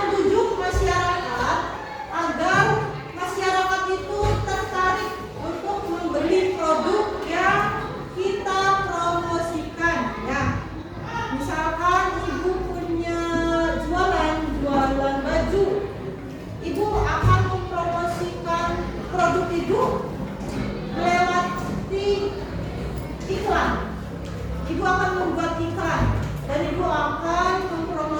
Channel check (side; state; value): both; identical; correlation 1.00